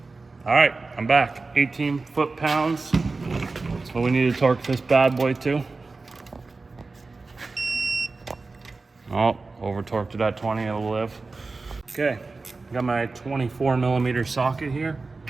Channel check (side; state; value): left; quieter; 3.8 dB